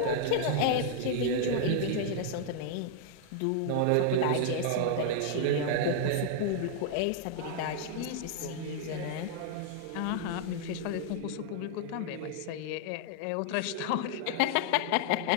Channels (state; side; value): different; both; correlation -0.01